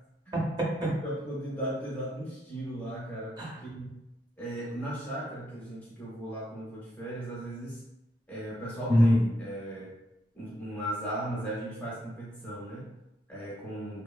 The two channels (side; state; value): both; normal; correlation 0.77